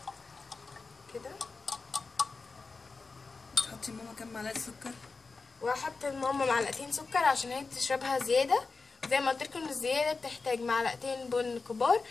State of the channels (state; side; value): quieter; right; 4.2 dB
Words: كده. تحطي ماما كام معلقه سكر؟ وهحط لماما معلقتين سكر عشان هي بتشربها زياده، زي ما قلت لكم الزياده بتحتاج معلقتين بن كبار